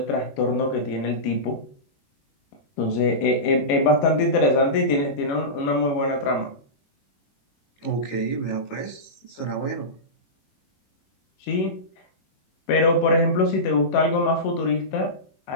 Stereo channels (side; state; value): right; late; 21 ms